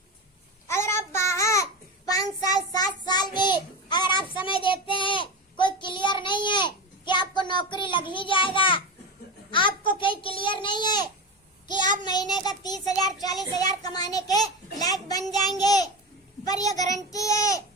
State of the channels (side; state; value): both; normal; correlation 0.22